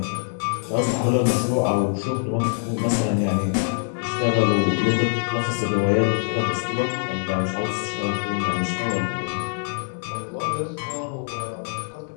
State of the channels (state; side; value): silent; right; 63 dB below the other